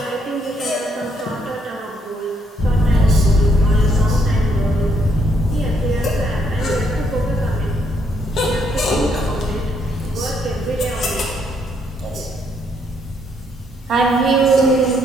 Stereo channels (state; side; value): normal; both; correlation 0.71